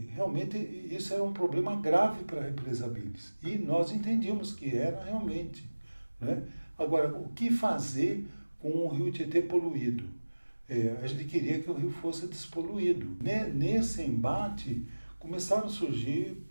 realmente isso era um problema grave para a represa Billings, e nós entendíamos que era realmente, né? Agora, o que fazer com o rio Tietê poluído? A gente queria que o rio fosse despoluído. Nesse embate, começaram a surgir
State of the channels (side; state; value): both; inverted; correlation -1.00